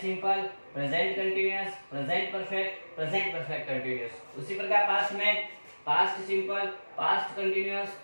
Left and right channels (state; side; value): inverted; both; correlation -1.00